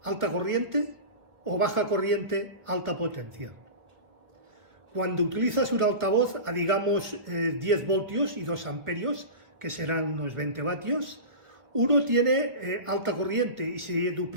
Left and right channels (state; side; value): late; left; 1.4 ms